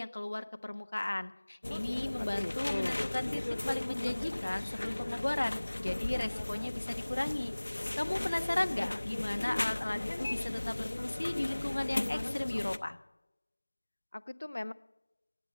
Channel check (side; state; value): both; inverted; correlation -1.00